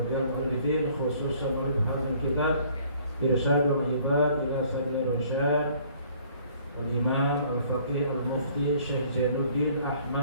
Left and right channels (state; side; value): inverted; both; correlation -0.58